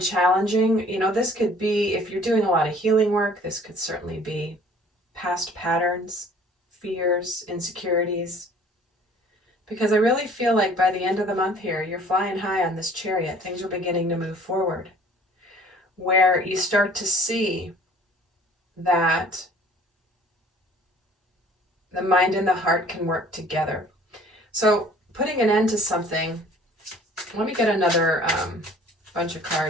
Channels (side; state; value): both; normal; correlation 0.52